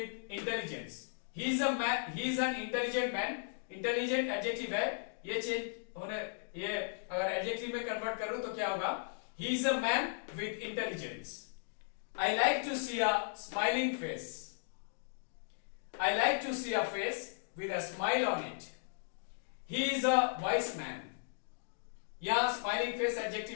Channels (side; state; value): right; silent; digital silence